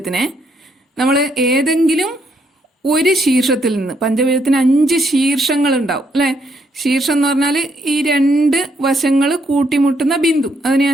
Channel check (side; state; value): both; normal; correlation 0.74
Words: നമ്മൾ ഏതെങ്കിലും ഒരു ശീർഷത്തിൽ നിന്ന്, പഞ്ചഭുജത്തിന് 5 ശീർഷങ്ങൾ ഉണ്ടാവും അല്ലെ. ശീർഷം എന്ന് പറഞ്ഞാൽ ഈ 2 വശങ്ങൾ കൂട്ടിമുട്ടുന്ന ബിന്ദു, അതിനെയാ